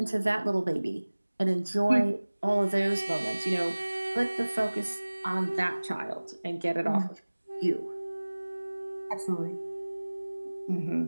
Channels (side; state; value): both; inverted; correlation -1.00